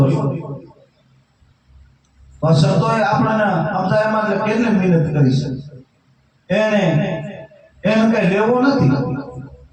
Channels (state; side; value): identical; both; correlation 1.00